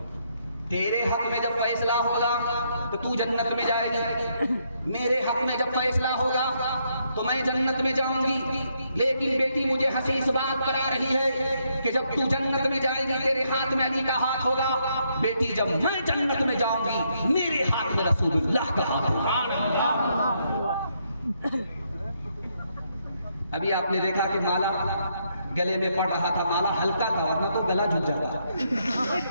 तेरे हक में जब फैसला होगा तो तू जन्नत में जाएगी, मेरे हक में जब फैसला होगा तो मैं जन्नत में जाऊंगी। लेकिन बेटी मुझे हंसी इस बात पर आ रही है कि जब तू जन्नत में जाएगी तेरे हाथ में अली का हाथ होगा, बेटी जब मैं जन्नत में जाऊंगी मेरे हाथ में रसूलुल्लाह का हाथ होगा। अभी आपने देखा कि माला गले में पड़ रहा था, माला हल्का था, वरना तो गला झुक जाता।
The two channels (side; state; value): both; inverted; correlation -0.76